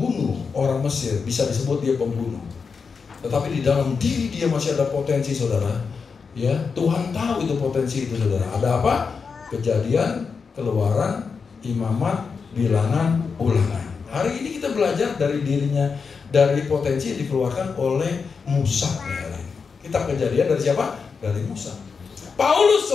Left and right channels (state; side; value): quieter; right; 5.4 dB